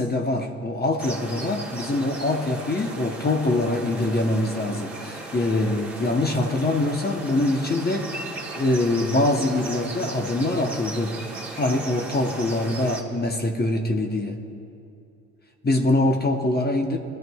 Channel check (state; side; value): normal; both; correlation 0.55